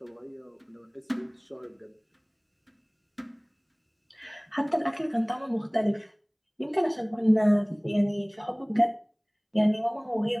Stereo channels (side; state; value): both; identical; correlation 1.00